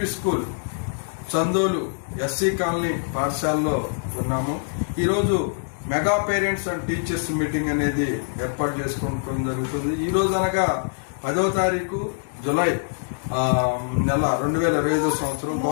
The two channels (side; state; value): right; silent; digital silence